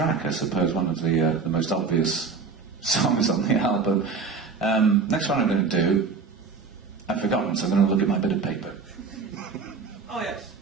I suppose, one of the most obvious songs on the album. Next one I'm going to do, I've forgotten, so I'm going to look at my bit of paper. Oh, yes.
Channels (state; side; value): quieter; left; 5.0 dB